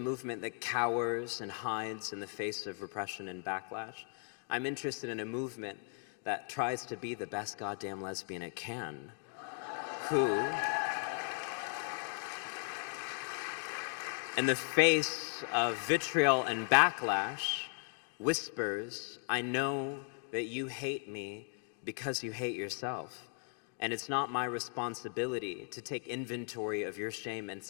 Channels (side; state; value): right; silent; 53 dB below the other